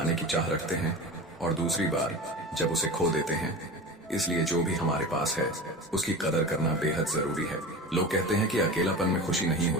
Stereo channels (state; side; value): normal; both; correlation 0.31